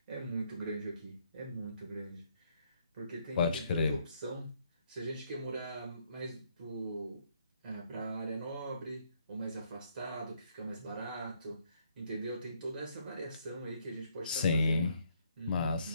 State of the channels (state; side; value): inverted; both; correlation -0.70